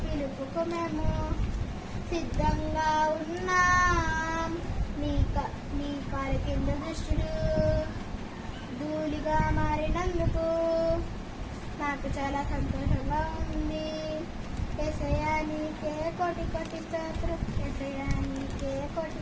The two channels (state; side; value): identical; both; correlation 1.00